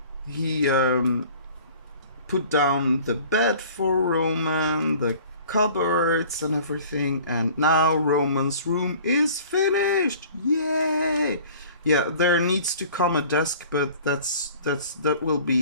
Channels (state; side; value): inverted; both; correlation -0.48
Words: He put down the bed for Roman, the cupboards and everything, and now Roman's room is finished. Yay! Yeah, there needs to come a desk, but that will